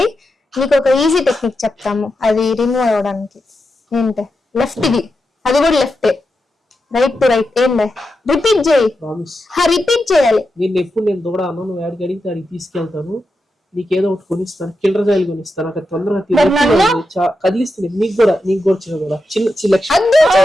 నీకు ఒక ఈజీ టెక్నిక్ చెప్తాము, అది రిమూవ్ అవ్వడానికి. ఏంటే లెఫ్ట్ ఇది, అది కూడా లెఫ్ట్, రైట్ టు రైట్. ఏం రిపీట్ చేయి, రిపీట్ చేయాలి. నేను దూడ అన్న, నువ్వు యాడికి అడిగితే అడిగి తీసుకెళ్తాను, నీకేదో ఒకటి కొనిస్తాను, కిల్లర్ జాయిలు కొనిస్తాను. అక్కడ తొందరగా కదిలిస్తుంది. నీకు కూడా చిన్న కూడా చిన్న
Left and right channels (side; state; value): both; normal; correlation 0.88